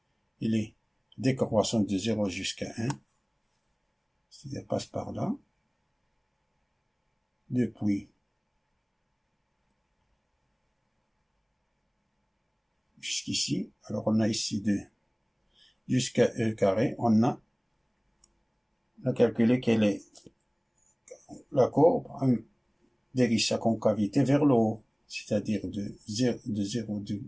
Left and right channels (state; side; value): identical; both; correlation 1.00